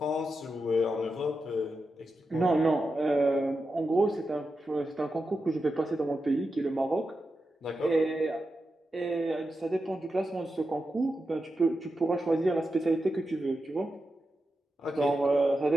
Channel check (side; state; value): both; normal; correlation 0.89